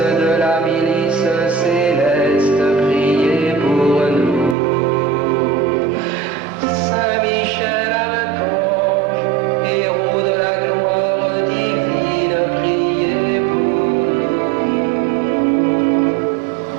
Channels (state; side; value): drops out; left; at 4.5 s